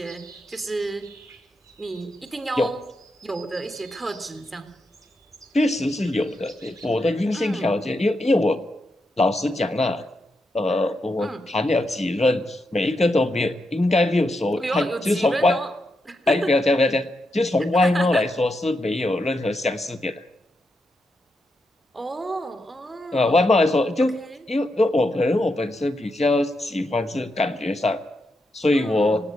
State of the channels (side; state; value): both; normal; correlation 0.84